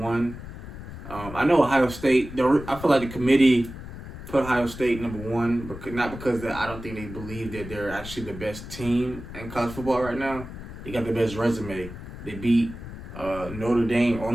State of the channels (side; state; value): left; noise; rumble, 11 dB below the sound